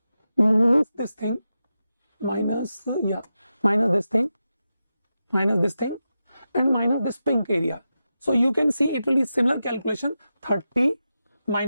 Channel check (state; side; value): inverted; both; correlation -0.91